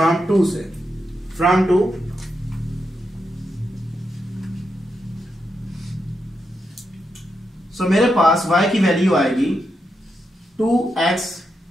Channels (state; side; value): normal; both; correlation 0.85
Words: 2 से, फ्रॉम 2। सो मेरे पास y की वैल्यू आएगी 2x